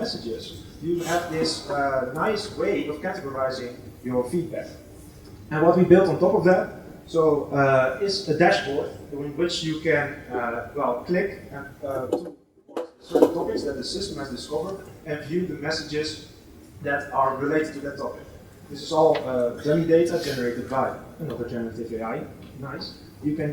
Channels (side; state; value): both; identical; correlation 1.00